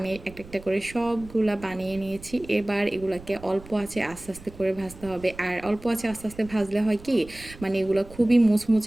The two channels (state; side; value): noise; right; rumble, 18 dB below the sound